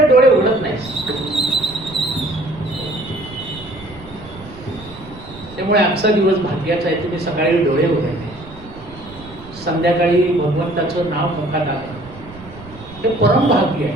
डोळे उघडत नाहीस. त्यामुळे आजचा दिवस भाग्याचा आहे. तुम्ही सकाळी डोळे उघडले, संध्याकाळी भगवंताचं नाव मुखात आलं, हे परम भाग्य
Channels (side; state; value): right; noise; rumble, 18 dB below the sound